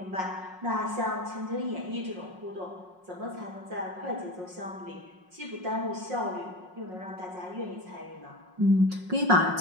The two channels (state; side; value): late; left; 5.5 ms